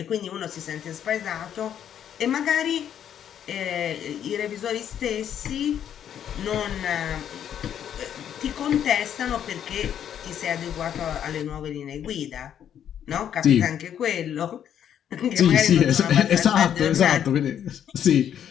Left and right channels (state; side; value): quieter; right; 9.5 dB